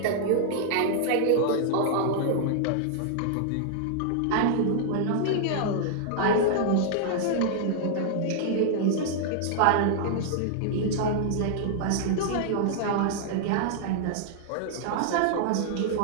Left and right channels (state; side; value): different; both; correlation -0.01